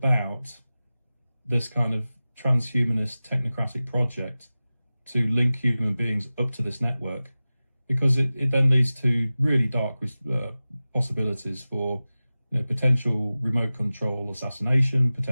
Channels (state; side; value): inverted; both; correlation -0.96